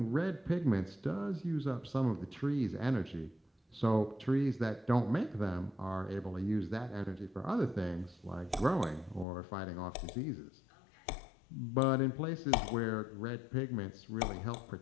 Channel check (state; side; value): drops out; right; at 9.2 s